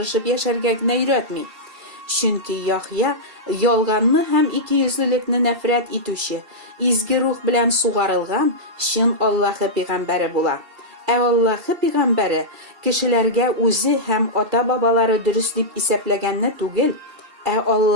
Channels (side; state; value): left; late; 2.7 ms